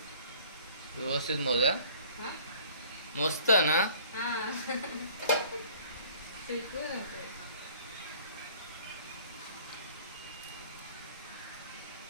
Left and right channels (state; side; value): inverted; both; correlation -0.53